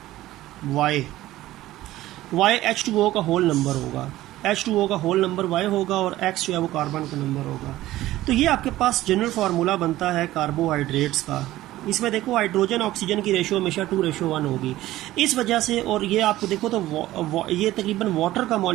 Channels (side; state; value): left; quieter; 15.7 dB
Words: Y, Y H2O का होल नंबर होगा, H2O का होल नंबर Y होगा, और X जो है वो कार्बन का नंबर होगा। तो ये आपके पास जनरल फार्मूला बनता है कार्बोहाइड्रेट्स का। इसमें देखो हाइड्रोजन ऑक्सीजन की रेशो हमेशा 2:1 होगी। इस वजह से, और ये आपको देखो तो ये तकरीबन वाटर का